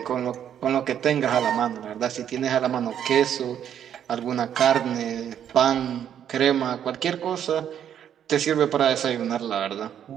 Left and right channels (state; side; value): quieter; left; 9.5 dB